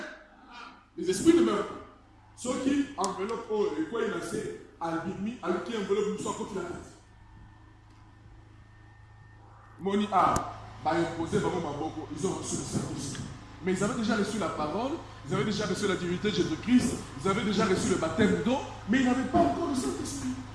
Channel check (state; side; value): identical; both; correlation 1.00